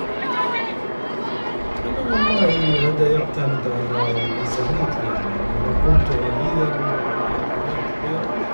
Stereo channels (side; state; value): both; inverted; correlation -1.00